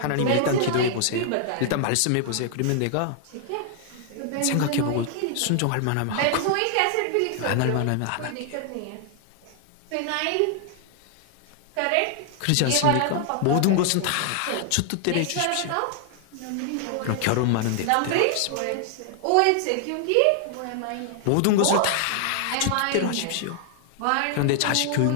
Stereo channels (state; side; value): different; both; correlation 0.00